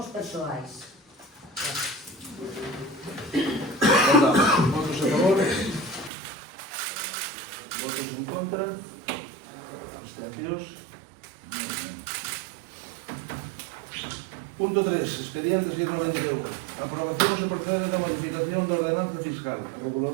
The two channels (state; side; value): drops out; left; at 6.1 s